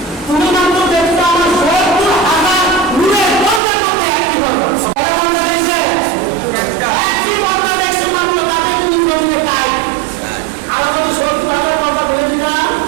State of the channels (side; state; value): left; drops out; at 3.6 s